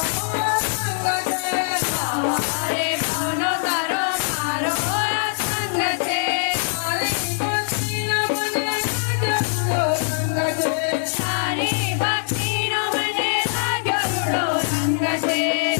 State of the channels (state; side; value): silent; right; digital silence